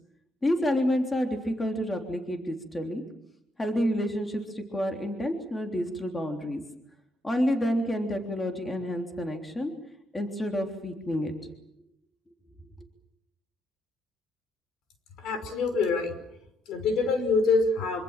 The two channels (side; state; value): both; normal; correlation 0.76